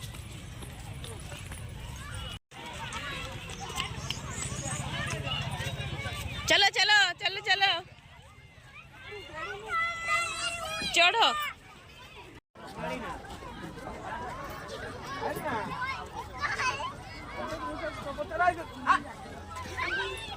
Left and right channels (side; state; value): both; identical; correlation 1.00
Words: चलो चलो चलो चलो चढ़ो